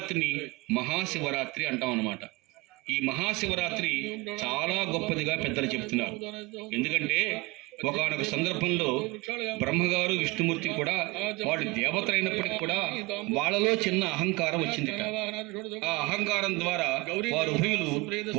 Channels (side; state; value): left; quieter; 23.1 dB